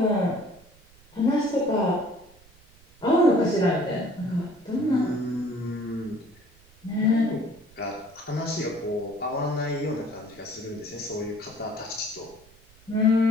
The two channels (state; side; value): noise; right; rumble, 27 dB below the sound